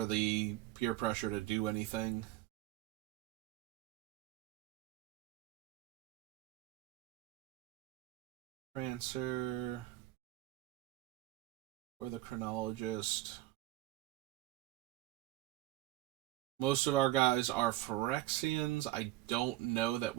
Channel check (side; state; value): left; quieter; 16.4 dB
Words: the peer pressure to do anything. Prancer or the Chronologist. Most of our guys are Phyrexians. I don't know that